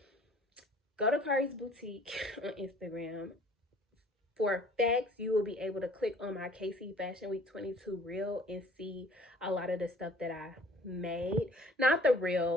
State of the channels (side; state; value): both; normal; correlation 0.52